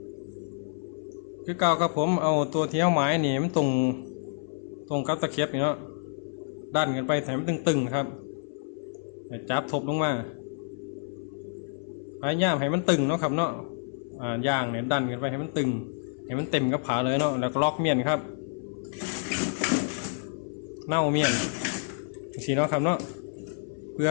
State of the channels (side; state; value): right; silent; 59 dB below the other